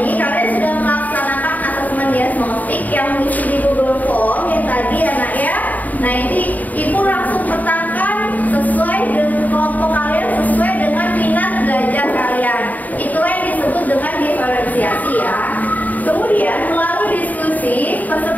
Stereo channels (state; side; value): late; right; 0.078 ms